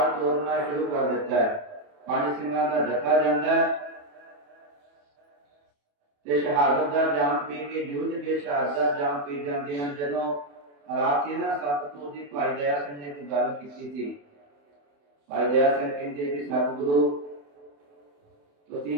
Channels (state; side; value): late; left; 28 ms